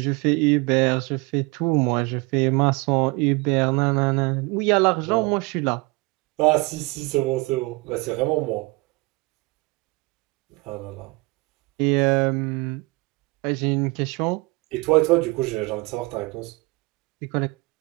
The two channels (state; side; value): quieter; left; 25.5 dB